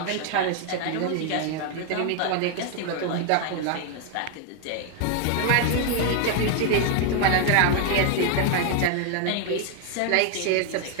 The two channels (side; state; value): both; different; correlation 0.00